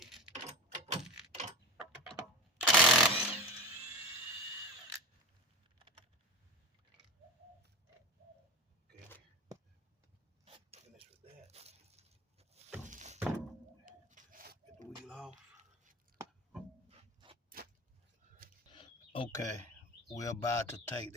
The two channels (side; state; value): both; normal; correlation 0.28